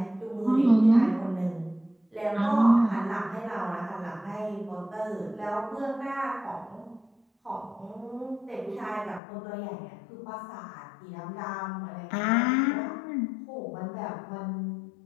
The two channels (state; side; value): drops out; right; at 9.2 s